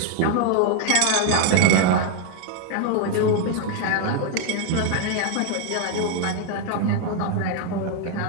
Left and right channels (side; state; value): both; different; correlation 0.00